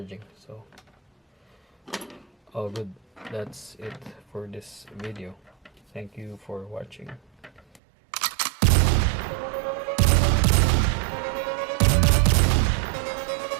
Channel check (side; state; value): left; drops out; at 7.8 s